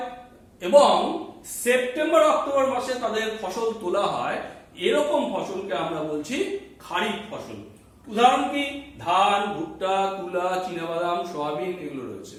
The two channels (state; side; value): identical; both; correlation 1.00